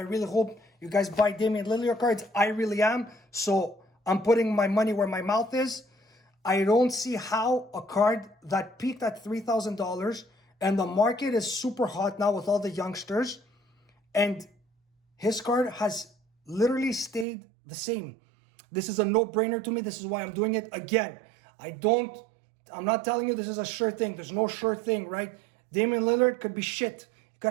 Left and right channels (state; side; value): drops out; left; at 17.2 s